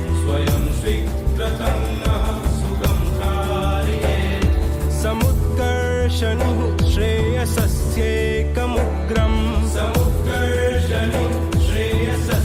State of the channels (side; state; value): both; identical; correlation 1.00